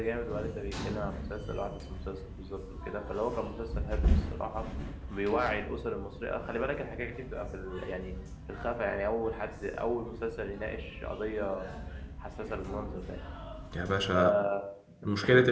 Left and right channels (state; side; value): identical; both; correlation 1.00